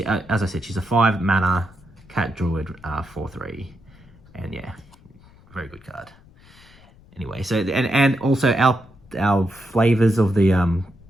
said, she's a 5 mana Cat Druid, 4/3, and yeah, very good card. Anyway, so and also our flavors of the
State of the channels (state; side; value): noise; left; rumble, 26 dB below the sound